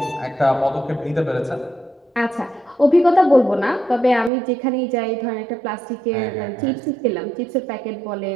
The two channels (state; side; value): drops out; left; at 4.3 s